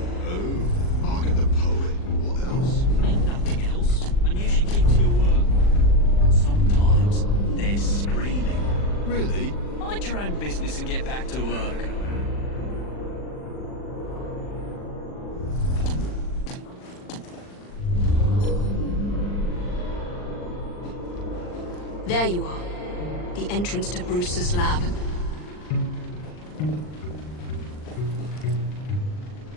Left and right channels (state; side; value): late; right; 39 ms